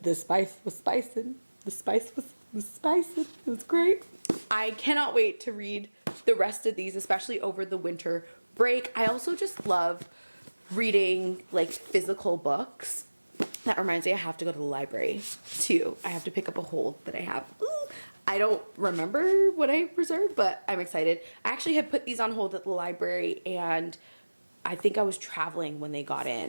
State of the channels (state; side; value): inverted; both; correlation -1.00